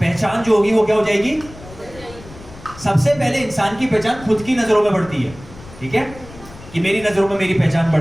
जो होगी वो क्या हो जाएगी? सबसे पहले इंसान की पहचान खुद की नजरों में बढ़ती है, ठीक है, कि मेरी नजरों में मेरी पहचान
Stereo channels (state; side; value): noise; left; rumble, 18 dB below the sound